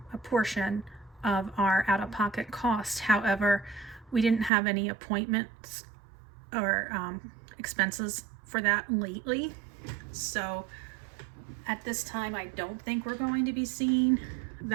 portion of our out-of-pocket cost. However, we didn't have any appointments or expenses for that lately, so at this time I don't think we're going to be seeing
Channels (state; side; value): drops out; left; at 4.5 s